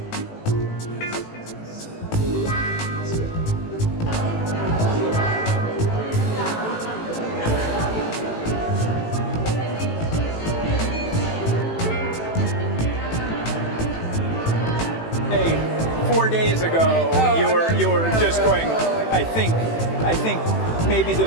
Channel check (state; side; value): late; right; 18 ms